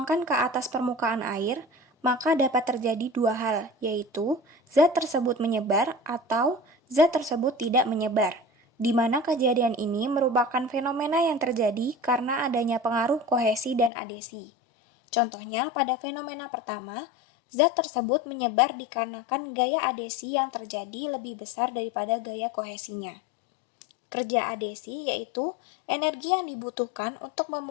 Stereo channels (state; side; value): drops out; right; at 13.9 s